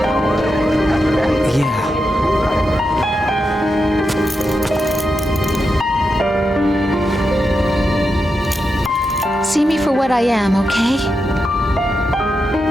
Yeah. See me for what I am, okay?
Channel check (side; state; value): both; normal; correlation 0.87